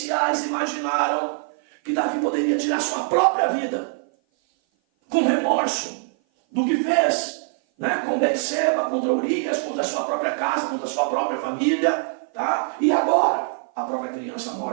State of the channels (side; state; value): left; silent; 56 dB below the other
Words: imaginaram que Davi poderia tirar sua própria vida, com remorso do que fez, com Betseba, contra Urias, contra a sua própria casa, contra a sua própria família, tá? E agora, a própria criança